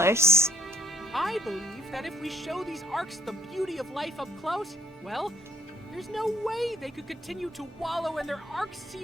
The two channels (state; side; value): normal; both; correlation 0.63